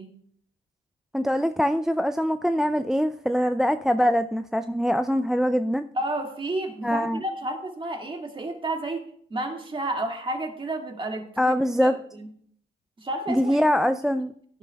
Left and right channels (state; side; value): normal; both; correlation 0.88